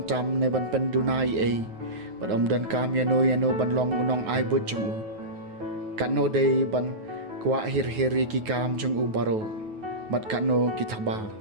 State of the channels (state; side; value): late; left; 9.3 ms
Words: ne ban pendunai ai. Bad dan kam yano ban long unong ai but jong u. Kano day ban kwa hir-hiri ki kam jong u baro. Bad kano kitaba